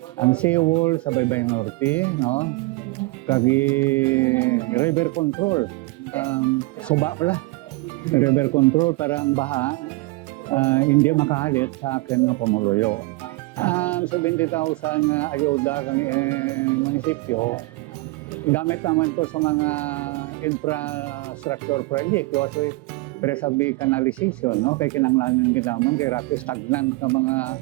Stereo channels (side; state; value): left; quieter; 22.8 dB